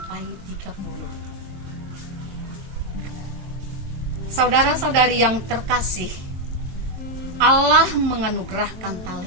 30. Saudara-saudari yang terkasih, Allah menganugerahkan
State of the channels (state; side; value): late; left; 22 ms